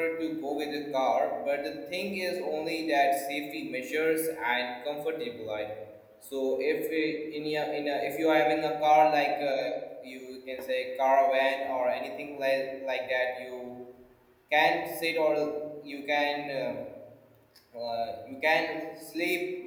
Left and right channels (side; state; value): both; identical; correlation 1.00